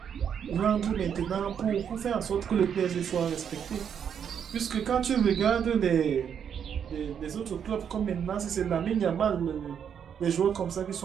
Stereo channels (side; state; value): left; quieter; 8.0 dB